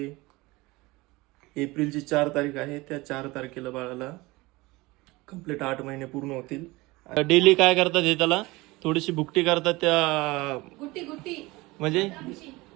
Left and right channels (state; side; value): quieter; left; 21.9 dB